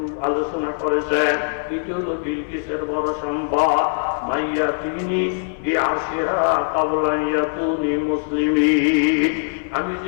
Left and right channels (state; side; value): silent; right; 60 dB below the other